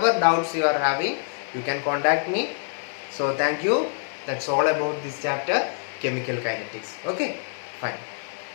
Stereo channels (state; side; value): silent; right; digital silence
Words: doubts you are having, you can contact me. So thank you. That's all about this chapter, chemical kinetics. Okay, fine.